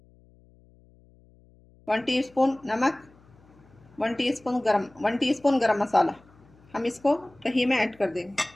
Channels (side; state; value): left; noise; hum, 28 dB below the sound